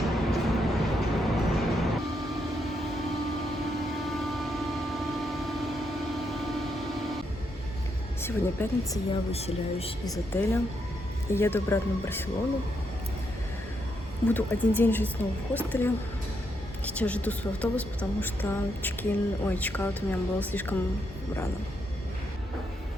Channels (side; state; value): both; normal; correlation 0.79